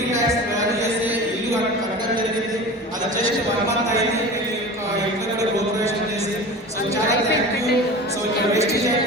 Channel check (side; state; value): both; normal; correlation 0.34